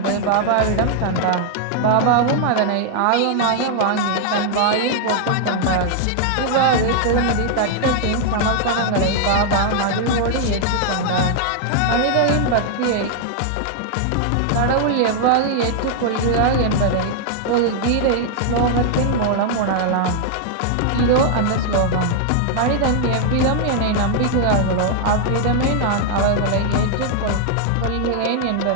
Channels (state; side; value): different; both; correlation 0.00